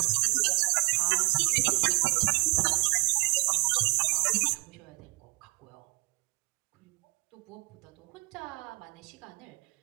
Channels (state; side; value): quieter; left; 32.5 dB